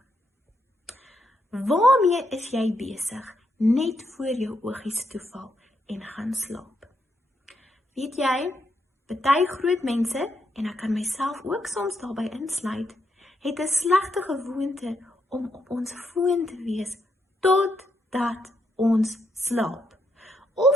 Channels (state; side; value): normal; both; correlation 0.79